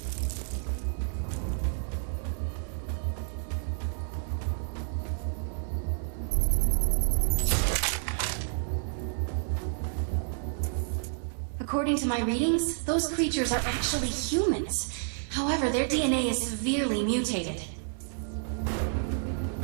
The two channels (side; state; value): left; silent; digital silence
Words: According to my readings, those creatures are actually humans. However, their DNA is severely mutated.